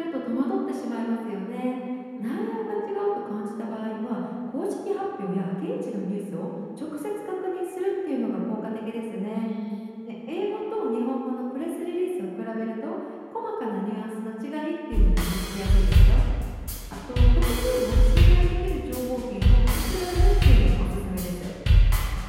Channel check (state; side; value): identical; both; correlation 1.00